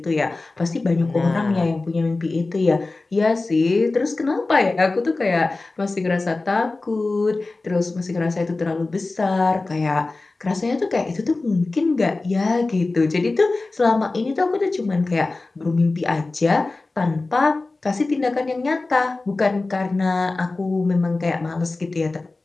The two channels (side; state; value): right; quieter; 3.4 dB